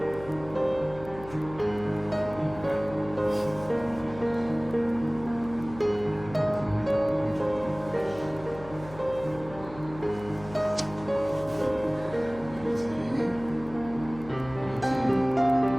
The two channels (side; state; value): left; noise; hum, 16 dB below the sound